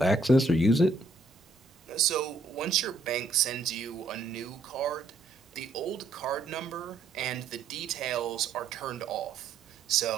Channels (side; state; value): left; quieter; 3.2 dB